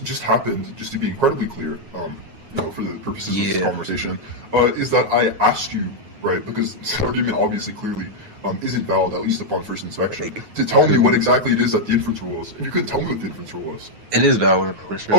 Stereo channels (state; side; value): late; left; 9.4 ms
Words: happened, just to be incredibly clear, for the purposes of this conversation, is that I asked you, right, because this argument obviously clearly isn't valid, at least upon first inspection, to tell me what exactly it is that the inference rule was. And you couldn't tell me what the inference rule was. It is valid, for sure.